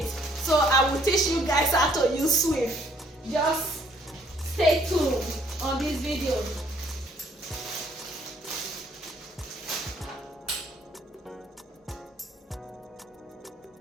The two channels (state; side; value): normal; both; correlation 0.64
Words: So I will teach you guys how to use swift. Just stay tuned on this video.